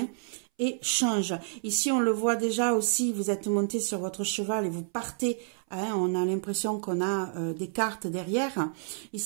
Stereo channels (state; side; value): silent; left; 58 dB below the other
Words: et change. Ici, on le voit déjà aussi, vous êtes monté sur votre cheval et vous partez. Hein, on a l'impression qu'on a des cartes derrière.